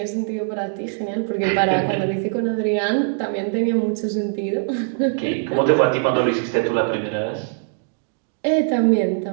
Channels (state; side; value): silent; left; digital silence